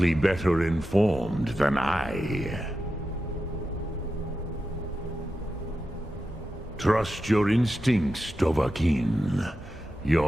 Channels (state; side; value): normal; both; correlation 0.90